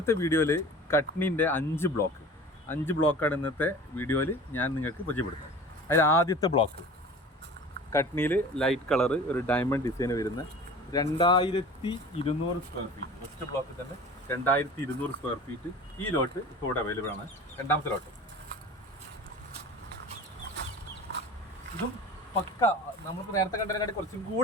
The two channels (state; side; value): normal; both; correlation 0.39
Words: വീഡിയോയിൽ കട്നിൻ്റെ 5 ബ്ലോക്കാണ് ഇന്നത്തെ വീഡിയോയിൽ ഞാൻ നിങ്ങൾക്ക് പരിചയപ്പെടുത്തുന്നത്. അതിൽ ആദ്യത്തെ ബ്ലോക്ക് കട്നിയിൽ ലൈറ്റ് കളറ് ഒരു ഡയമണ്ട് ഡിസൈൻ വരുന്ന 2200 സ്ക്വയർ ഫീറ്റ്. ഫസ്റ്റ് ബ്ലോക്കിൽ തന്നെ 2200 സ്ക്വയർ ഫീറ്റ് ഈ ലോട്ട് ഇപ്പോൾ ഇവിടെ അവൈലബിൾ ആണ്. രണ്ടാമത്തെ ലോട്ട് ഇതും പക്ക നമുക്ക് നേരത്തെ കണ്ടതിനായിട്ട് കുറച്ചും